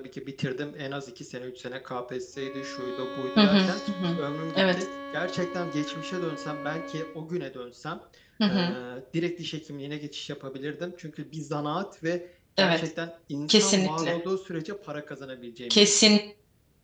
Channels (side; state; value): both; identical; correlation 1.00